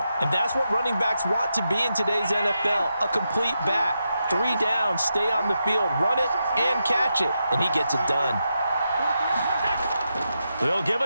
And that's what running backs want to be in today's NFL, a complete back. 3 down, stay on the field, run it, and catch it. And he gets it done. They'll give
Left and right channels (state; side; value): inverted; both; correlation -0.86